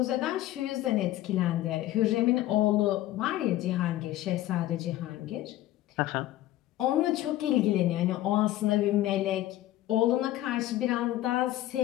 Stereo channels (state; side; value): quieter; right; 14.7 dB